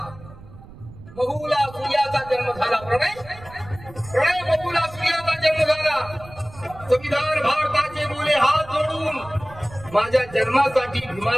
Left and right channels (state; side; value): noise; right; rumble, 18 dB below the sound